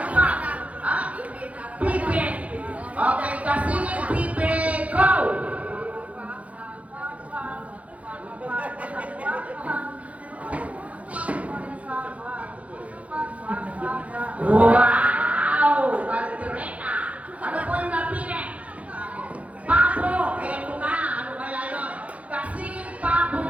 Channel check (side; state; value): left; late; 0.066 ms